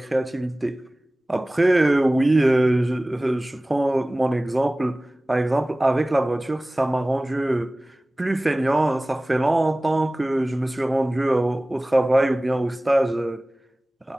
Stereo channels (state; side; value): normal; both; correlation 0.98